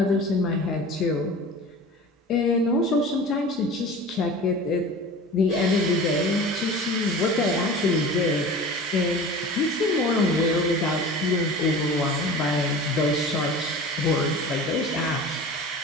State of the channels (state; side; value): normal; both; correlation 0.37